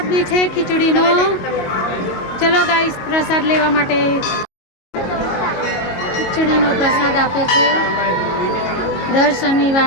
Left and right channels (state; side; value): late; right; 22 ms